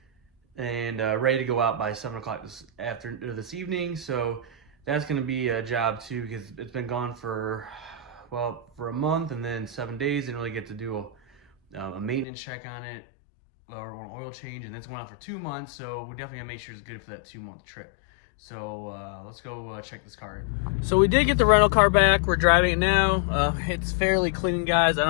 and ready to go out by 7 o'clock this evening. So that's going to be a job too, because it's been gone for a month, and then 7 days. Didn't really get to do a maintenance check on it or an oil change, and that's going on for 2 months. So we definitely gotta make sure it's good for that 2-month trip. So let's go check this car in. So we did get the rental car back. We're driving it now. It's fairly clean, guys. I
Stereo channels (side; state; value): right; drops out; at 12.2 s